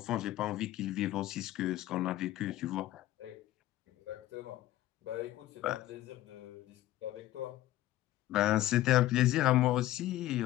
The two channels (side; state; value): right; quieter; 15.1 dB